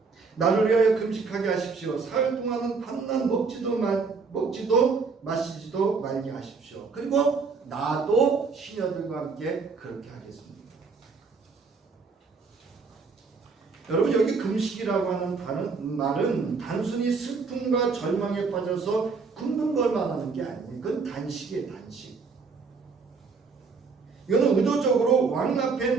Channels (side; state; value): left; quieter; 4.8 dB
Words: 나를 위하여 금식하게 하십시오. 사흘 동안은 밤낮 먹지도 마시지도 말게 하십시오. 그리고 나도 시녀들과 함께 그렇게 하겠습니다. 여러분, 여기 금식이라고 하는 말은 단순히 슬픔과 절망에 빠져서 굶는 걸 말하는 게 아니에요. 그건 단식이에요. 단식. 이거는 의도적으로 왕 앞에